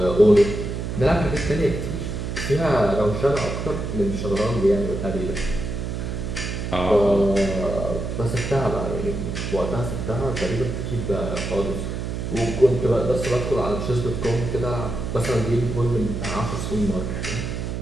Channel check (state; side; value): noise; right; hum, 4 dB below the sound